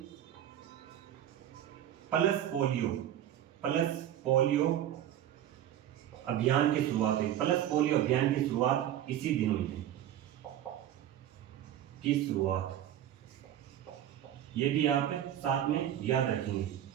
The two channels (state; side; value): quieter; left; 11.4 dB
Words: पल्स पोलियो अभियान की शुरुआत हुई। पल्स पोलियो अभियान की शुरुआत इसी दिन हुई थी। ये भी आप साथ में याद रखेंगे।